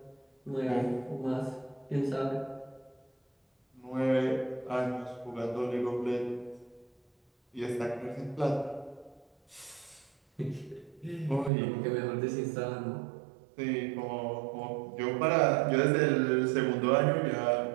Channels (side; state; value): left; drops out; at 11.5 s